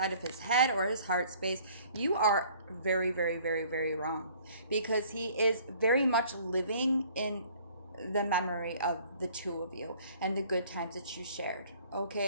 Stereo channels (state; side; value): inverted; both; correlation -0.55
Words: of his head or his heart space, you are very, very, very, very wrong because he is very much living in the memory of the two of you and the good times that you shared.